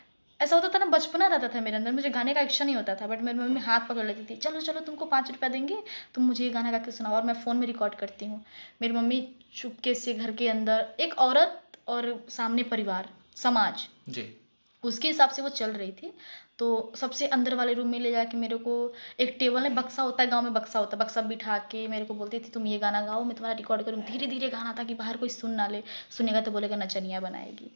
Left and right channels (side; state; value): both; inverted; correlation -1.00